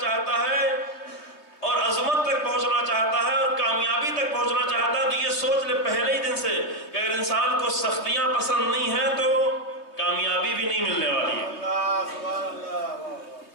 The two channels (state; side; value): late; right; 3.2 ms